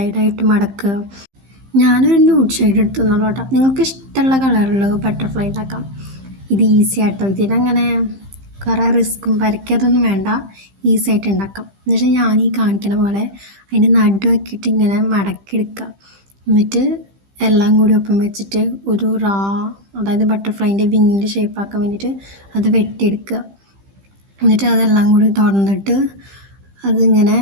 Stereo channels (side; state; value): left; late; 15 ms